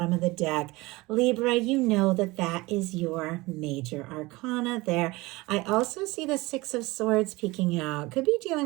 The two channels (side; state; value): left; quieter; 21.7 dB